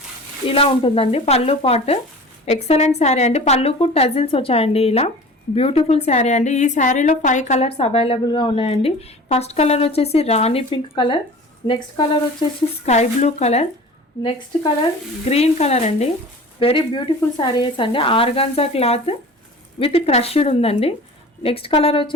ఇలా ఉంటుందండి. పళ్ళు పాట్ ఎక్సలెంట్ శారీ అండి. పళ్ళుకు టజిల్స్ వచ్చాయండి. ఇలా బ్యూటిఫుల్ శారీ అండి. ఈ శారీలో 5 కలర్స్ అవైలబుల్గా ఉన్నాయండి. ఫస్ట్ కలర్ వచ్చేసి రాణి పింక్ కలర్, నెక్స్ట్ కలర్ వచ్చేసి sky blue colour, next colour green colour అండి. వెరీ బ్యూటిఫుల్ శారీస్ అండి. ఆర్గాన్జా క్లాత్ విత్ క్రష్డ్ ఉందండి. నెక్స్ట్ కలర్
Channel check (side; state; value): both; normal; correlation 0.40